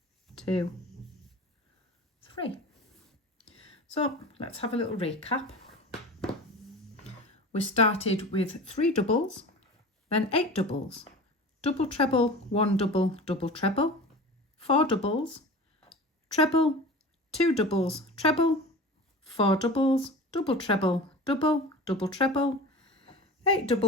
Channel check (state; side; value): normal; both; correlation 0.34